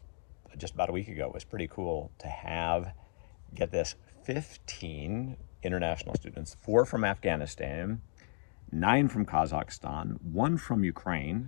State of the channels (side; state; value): right; silent; digital silence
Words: a week ago. It was pretty cool to have, get this, 15 international students, 4 from Afghanistan, 9 from Kazakhstan, 1 from